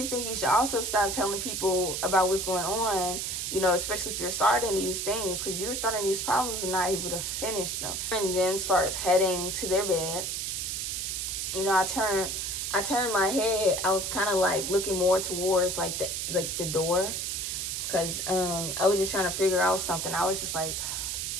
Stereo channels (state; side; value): noise; right; hiss, 2 dB below the sound